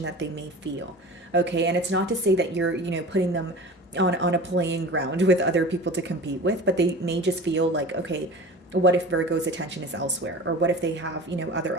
that they may feel. Okay, and it's not to say that you're, putting them on a playing ground with other people to compete with, but they may just feel like, okay, what if Virgo's attention is elsewhere? Or what if they have,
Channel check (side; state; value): both; normal; correlation 0.36